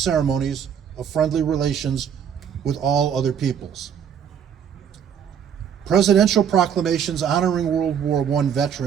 of friendly relations with all other peoples. Presidential proclamations honoring World War I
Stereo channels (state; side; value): quieter; left; 8.2 dB